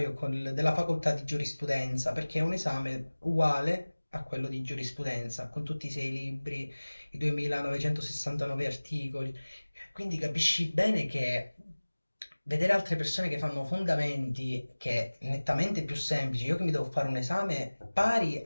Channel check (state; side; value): inverted; both; correlation -1.00